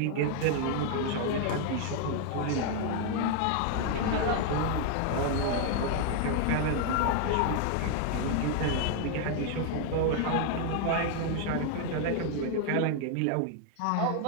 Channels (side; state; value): both; different; correlation 0.00